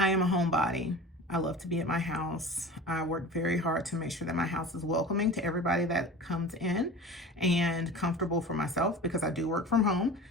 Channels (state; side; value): normal; both; correlation 0.35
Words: am a homebody. I love to be at my house. I work very hard to make sure that my house is welcoming to everybody that comes in and comfortable for myself, because I do work from home.